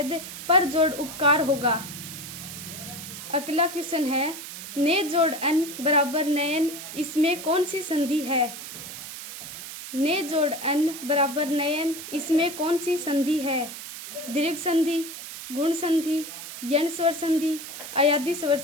पर जोड़ उपकार होगा। अगला क्वेश्चन है, ने जोड़ एन बराबर नयन, इसमें कौन सी संधि है? ने जोड़ एन बराबर नयन, इसमें कौन सी संधि है? दीर्घ संधि, गुण संधि, यण स्वर संधि, अयादि स्वर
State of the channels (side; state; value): right; noise; hiss, 10 dB below the sound